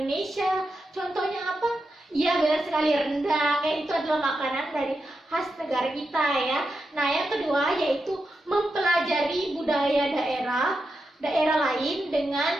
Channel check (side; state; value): both; normal; correlation 0.87